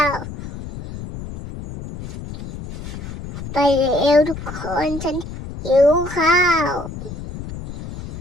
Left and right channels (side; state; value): left; noise; rumble, 10 dB below the sound